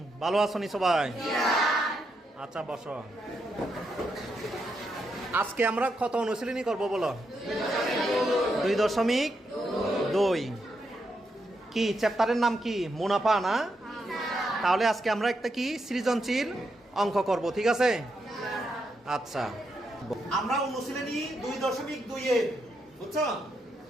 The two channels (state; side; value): normal; both; correlation 0.81